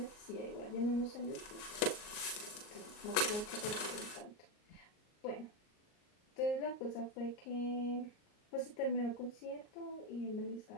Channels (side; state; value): right; late; 38 ms